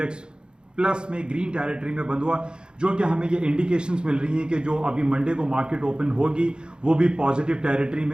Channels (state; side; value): late; left; 0.049 ms